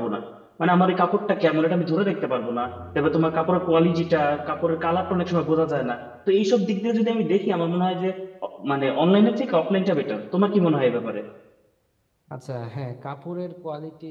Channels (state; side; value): identical; both; correlation 1.00